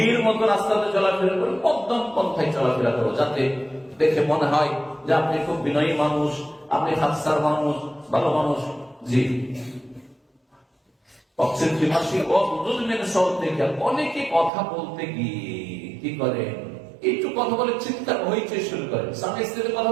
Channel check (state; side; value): drops out; left; at 14.5 s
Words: মতো রাস্তাতে চলাফেরা করো, মধ্যম পন্থায় চলাফেরা করো, যাতে দেখে মনে হয় যে আপনি খুব বিনয়ী মানুষ, আপনি হাস্যার মানুষ, ভালো মানুষ। জি, অনেকে কথা বলতে গিয়ে কি করে, একটু কথা বলে চিৎকার হইতে শুরু করে। স্বামী স্ত্রীতে কথা